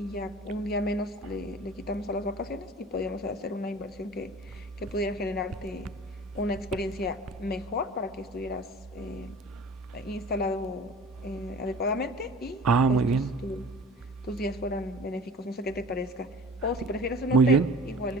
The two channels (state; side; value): normal; both; correlation 0.42